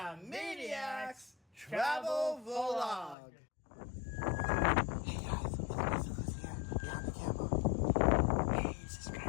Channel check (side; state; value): right; drops out; at 3.2 s